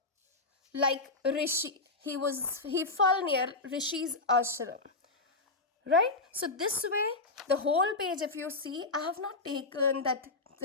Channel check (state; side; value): quieter; right; 3.3 dB